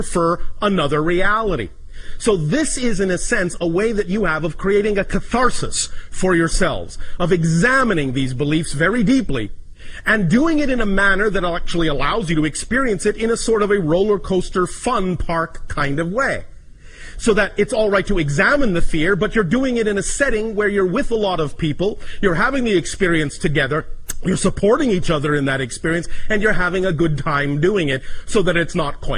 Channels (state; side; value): identical; both; correlation 1.00